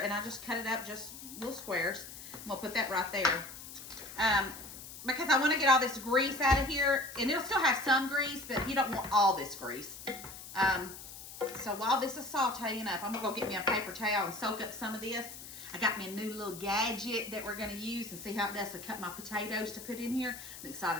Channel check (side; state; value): left; noise; hiss, 13 dB below the sound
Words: and I just cut it up just little squares. I'm gonna put that right there. Because I wanna get all this grease out of here and it'll still have some grease, but you don't want all this grease. So while this is sauteing up, I'm gonna go get me a paper towel and soak up some of this. I got me a new little gadget that we're gonna use and see how it does to cut my potatoes to put in here. I'm